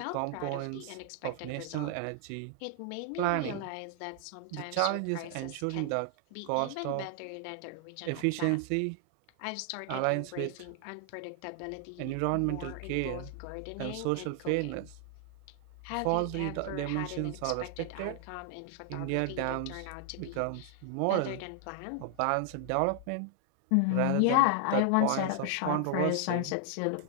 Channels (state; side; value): different; both; correlation 0.00